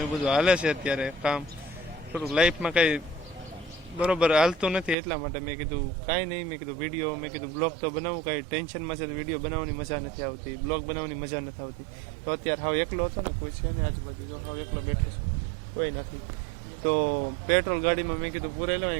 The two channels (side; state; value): left; drops out; at 5.0 s